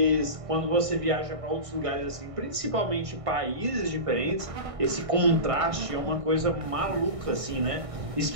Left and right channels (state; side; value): late; left; 1.6 ms